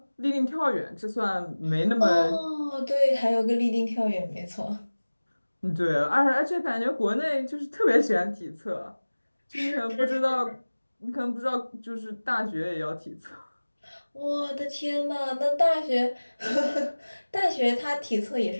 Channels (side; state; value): both; inverted; correlation -1.00